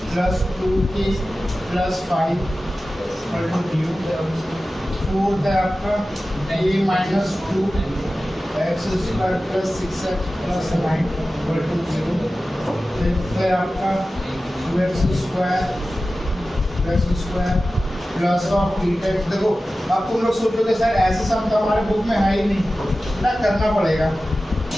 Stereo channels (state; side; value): normal; both; correlation 0.95